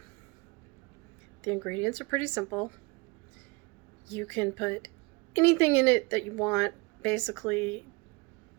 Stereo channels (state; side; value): quieter; left; 27.0 dB